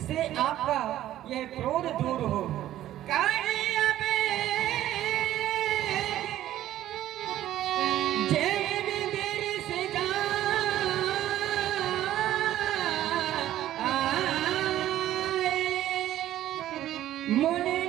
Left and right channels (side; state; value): left; quieter; 13.2 dB